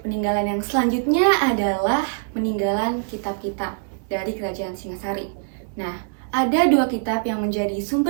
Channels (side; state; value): left; silent; digital silence